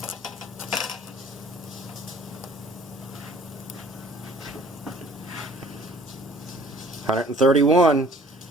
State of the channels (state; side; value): normal; both; correlation 0.54